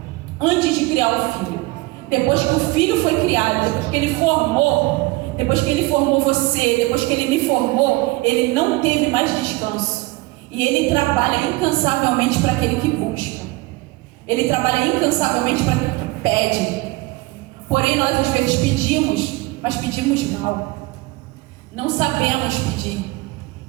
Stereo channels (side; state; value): left; quieter; 21.9 dB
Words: Antes de criar o filho. Depois que o filho foi criado, depois que Ele formou você, depois que Ele me formou, Ele não teve mais descanso. E Ele trabalha incansavelmente para aquele que busca. Ele trabalha incansavelmente para aquele que pede. Porém, nós às vezes pedimos, mas pedimos mal. Não sabemos pedir.